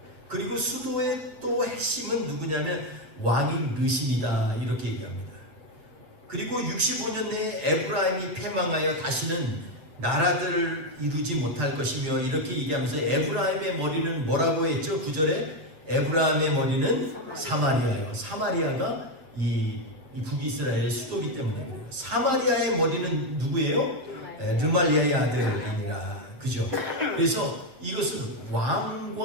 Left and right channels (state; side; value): late; left; 7.2 ms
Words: 그리고 수도의 또 핵심은 누구냐면 왕인 르신이다 이렇게 얘기합니다. 그리고 65년 내에 에브라임이 패망하여 다시는 나라들을 이루지 못할 것이며 이렇게 얘기하면서 에브라임의 머리는 뭐라고 했죠? 9절에 에브라임의 머리는 사마리아예요. 사마리아가 이 북이스라엘의 수도이기 때문에 사마리아의 머리는 누구예요? 르말리아의 아들이니라. 그죠? 그래서 이것은